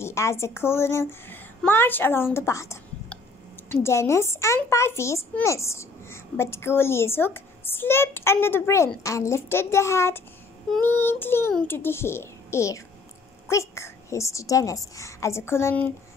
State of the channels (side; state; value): right; quieter; 3.5 dB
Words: as the colonel marched along the path. Dennis and Pieface missed, but Curly's hook slipped under the brim and lifted the hat neatly into the air. Quick, hissed Dennis as the colonel